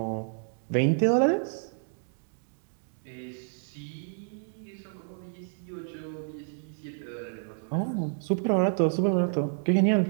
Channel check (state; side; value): silent; left; digital silence